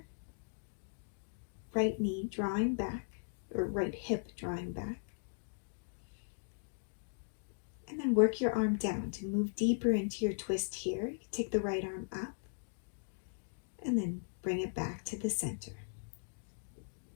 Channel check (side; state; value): right; silent; digital silence